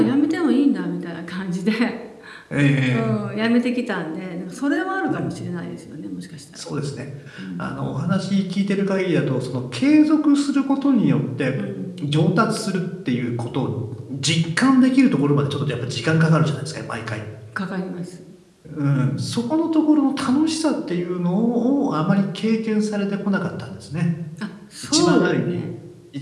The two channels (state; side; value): identical; both; correlation 1.00